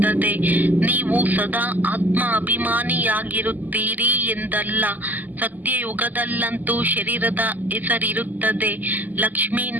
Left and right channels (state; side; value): late; left; 0.083 ms